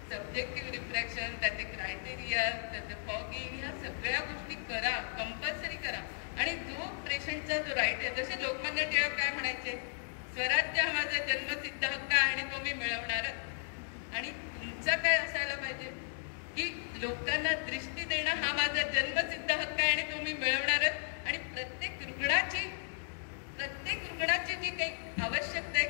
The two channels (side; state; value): right; silent; digital silence